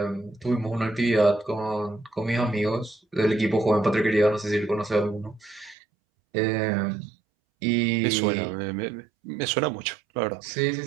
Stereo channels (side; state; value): left; drops out; at 5.8 s